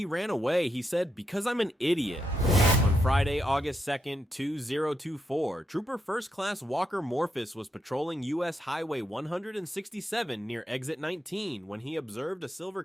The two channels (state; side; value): normal; both; correlation 0.82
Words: ran away, he said, "Because I'm an idiot." On Friday, August 2nd, 2024, Trooper First Class Walker Morphus was patrolling US Highway 167 near Exit 19 when he observed a